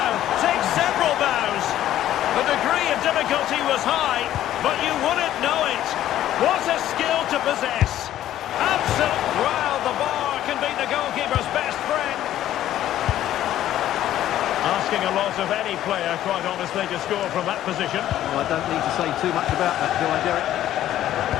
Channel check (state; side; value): quieter; right; 12.6 dB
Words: take several bows. The degree of difficulty was high, but you wouldn't know it. What a skill to possess. Absolute. Well, the bar can be the goalkeeper's best friend. Asking a lot of any player, quite honestly, to score from that position. Well, I don't need to say too much about that, do I, Derek?